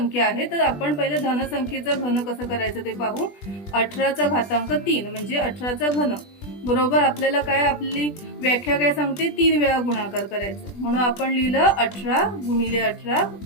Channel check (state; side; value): late; right; 20 ms